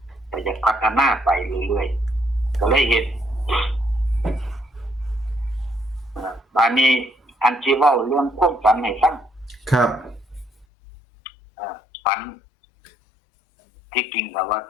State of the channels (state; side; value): drops out; right; at 10.7 s